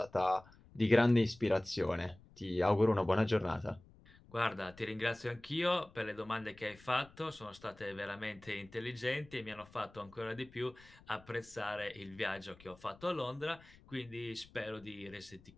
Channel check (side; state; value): left; noise; rumble, 24 dB below the sound